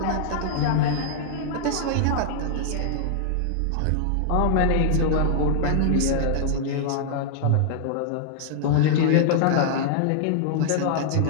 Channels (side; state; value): both; different; correlation -0.01